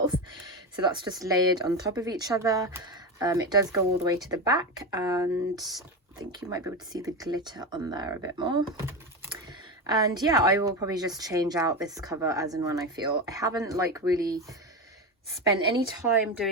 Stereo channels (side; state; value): both; normal; correlation 0.17